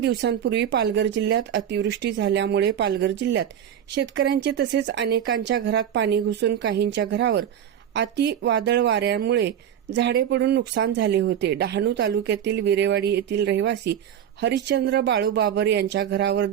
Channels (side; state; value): left; quieter; 9.6 dB